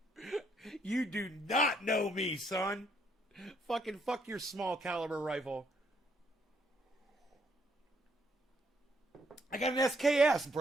You do not know me, son. Fucking fuck your small caliber rifle. I got an SKS,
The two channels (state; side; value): normal; both; correlation 0.71